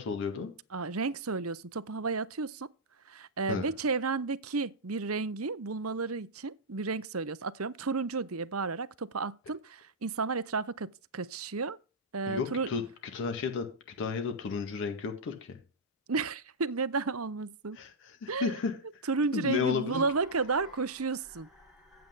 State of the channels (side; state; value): both; normal; correlation -0.07